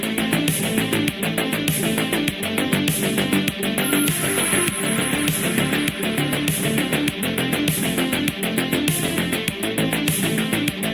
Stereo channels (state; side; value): noise; right; hum, 27 dB below the sound